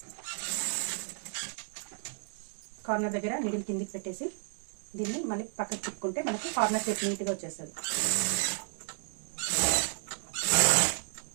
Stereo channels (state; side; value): silent; left; digital silence